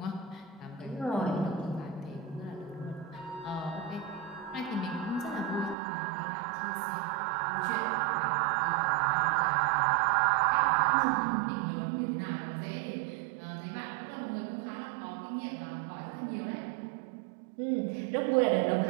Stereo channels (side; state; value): left; drops out; at 5.8 s